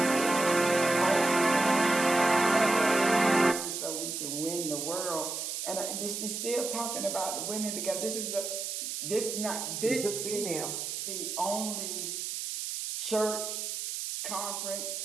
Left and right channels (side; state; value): right; noise; hiss, 4 dB below the sound